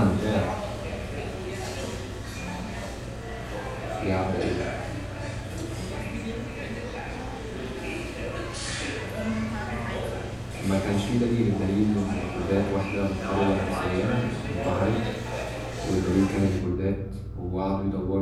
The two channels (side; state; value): both; identical; correlation 1.00